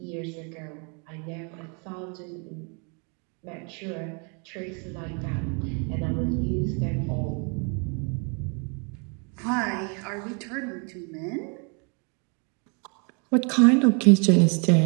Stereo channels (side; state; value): left; quieter; 35.9 dB